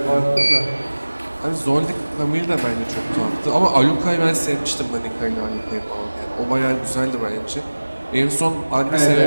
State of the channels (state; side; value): inverted; both; correlation -1.00